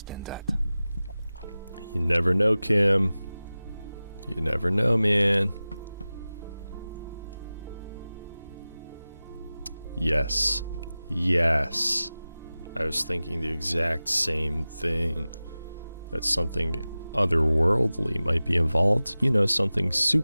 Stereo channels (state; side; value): inverted; both; correlation -0.96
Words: than that. You never know, Kim. You never know, man. Yes. Yes. I was thinking the exact same thing. That something otherworldly might be involved. You know, something